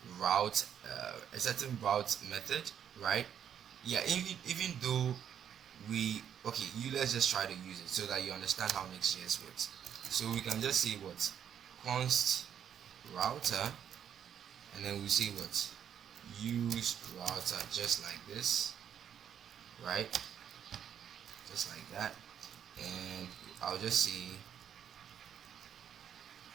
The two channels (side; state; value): left; quieter; 8.9 dB